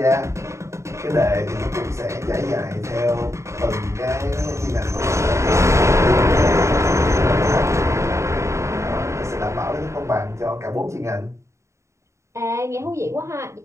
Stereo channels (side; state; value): left; late; 0.14 ms